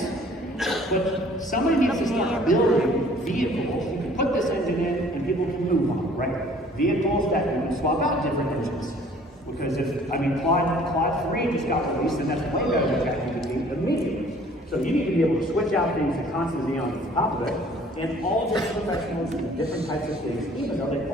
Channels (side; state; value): both; normal; correlation 0.54